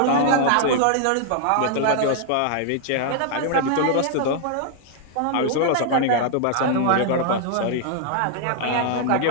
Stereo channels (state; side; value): different; both; correlation 0.00